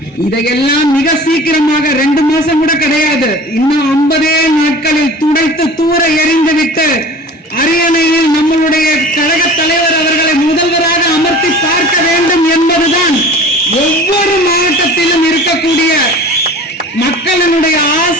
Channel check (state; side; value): normal; both; correlation 0.41